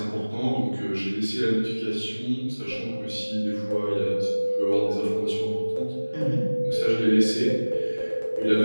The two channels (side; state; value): both; inverted; correlation -1.00